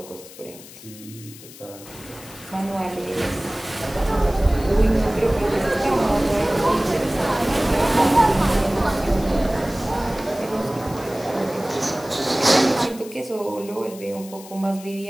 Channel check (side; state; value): left; noise; hiss, 18 dB below the sound